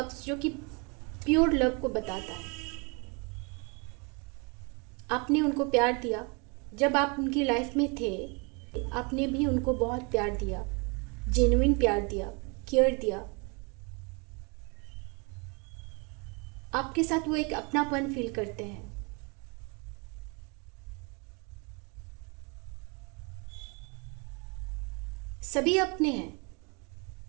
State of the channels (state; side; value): quieter; left; 32.0 dB